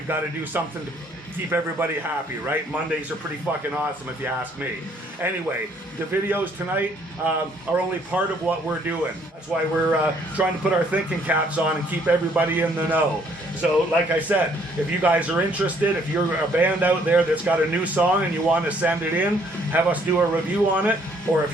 got to do something to keep everybody happy, right? Mondays are pretty fucking awesome if you ask me. Anyway, the videos tonight are only part of what we're doing. That's why we're trying to put our thinking caps on and keep everybody in the know. So like I said, if you guys are interested, if you're a band out there that's got a new song and you want to send it in, have us do a review on it, or if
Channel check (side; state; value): both; normal; correlation 0.64